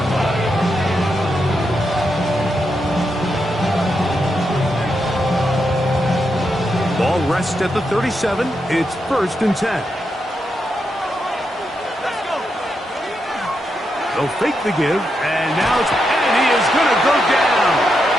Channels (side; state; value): both; normal; correlation 0.84